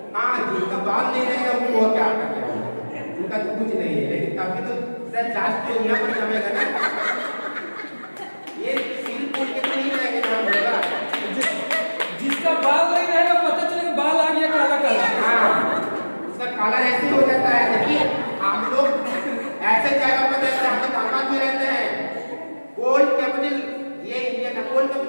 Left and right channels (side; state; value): both; inverted; correlation -1.00